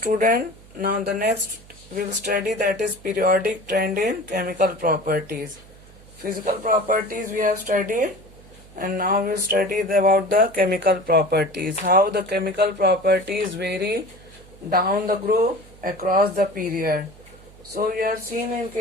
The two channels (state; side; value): noise; right; hum, 23 dB below the sound